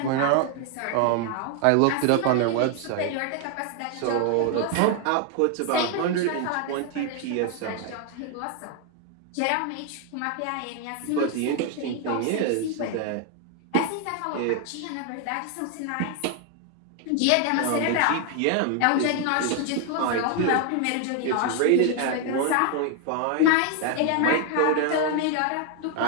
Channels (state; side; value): different; both; correlation 0.00